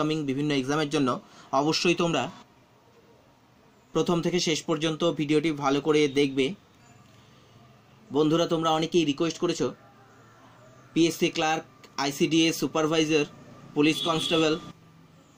বিভিন্ন এক্সামের জন্য। অবশ্যই তোমরা প্রথম থেকে শেষ পর্যন্ত ভিডিওটি ভালো করে দেখবে। বন্ধুরা, তোমরা অনেকেই রিকোয়েস্ট করেছো PSC clerk, ICDS supervisor, police constable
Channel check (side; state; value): both; identical; correlation 1.00